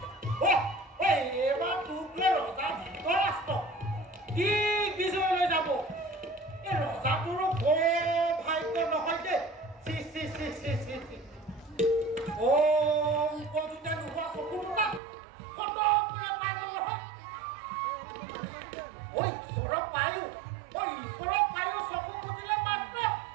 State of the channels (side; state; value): left; drops out; at 15.0 s